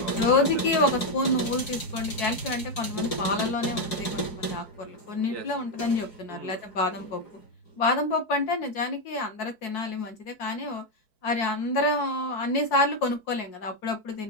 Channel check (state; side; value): late; right; 4.6 ms